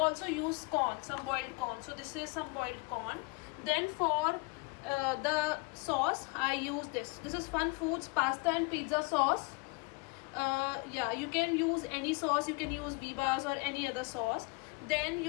also use corn, some boiled corn. So this is some boiled corn. Then for the sauce I use this. This is Fun Foods pasta and pizza sauce. Yeah, you can use any sauce. You can use Bibas or any other sauce. Then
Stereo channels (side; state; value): right; quieter; 29.5 dB